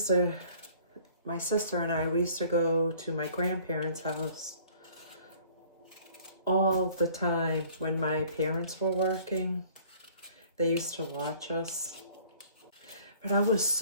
my sister and I, we used to go to my grandparents' house all the time when my parents were working. They used to watch us. But I was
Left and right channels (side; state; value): both; inverted; correlation -0.54